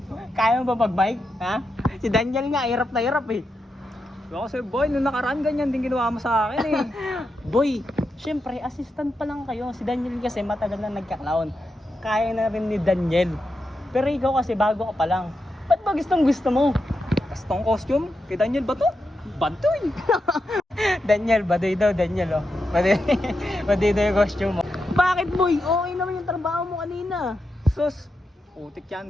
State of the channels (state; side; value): normal; both; correlation 0.86